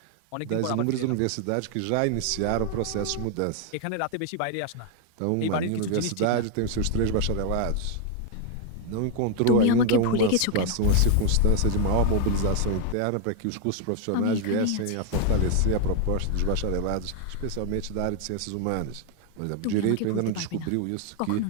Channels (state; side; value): different; both; correlation 0.00